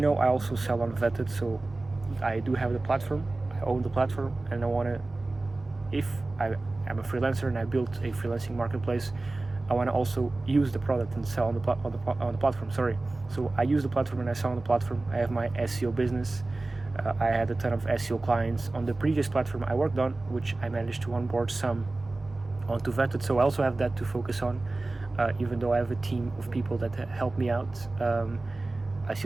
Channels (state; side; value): quieter; left; 3.1 dB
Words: know, I also sell on Vettedd, so I do have the platform. I own the platform, and if I'm a freelancer and I built a freelancing marketplace, I want to also use the product and sell on the platform. So I use the platform and I sell on the platform. I have my SEO business. I had a ton of SEO clients on the previous platform I worked on, which I managed to onboard some onto Vettedd. So I also have that to focus on. Even though I have a team of people that help me out, I